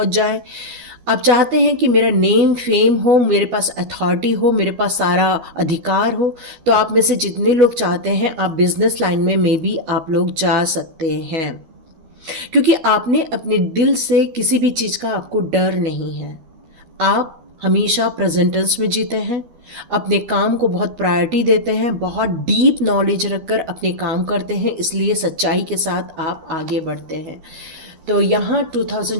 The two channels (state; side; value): late; left; 12 ms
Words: जाए। आप चाहते हैं कि मेरा नेम फेम हो, मेरे पास अथॉरिटी हो, मेरे पास सारा अधिकार हो। तो आप में से जितने लोग चाहते हैं आप बिजनेस लाइन में मे बी आप लोग जा सकते हैं, क्योंकि आपने अपने दिल से किसी भी चीज़ का आपको डर नहीं है। आप हमेशा प्रेजेंटेंस में जीते हैं, अपने काम को बहुत प्रायोरिटी देते हैं, बहुत डीप नॉलेज रखकर अपने काम करते हैं, इसलिए सच्चाई के साथ आप आगे बढ़ते हैं। तो यहाँ